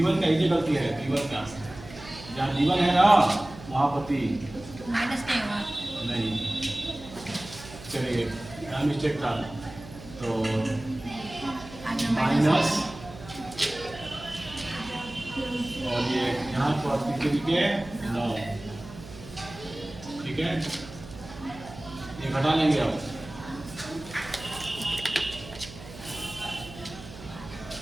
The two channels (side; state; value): right; noise; hum, 16 dB below the sound